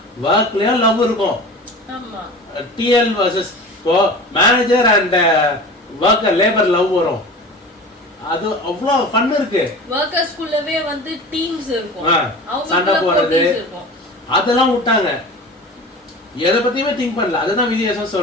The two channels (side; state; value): both; normal; correlation 0.35